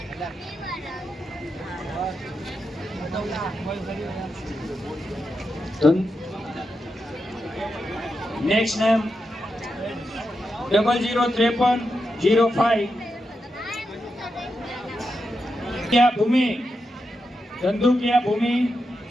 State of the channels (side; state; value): both; normal; correlation 0.87